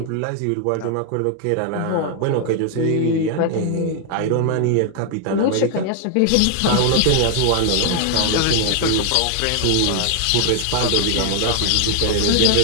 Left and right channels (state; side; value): different; both; correlation 0.00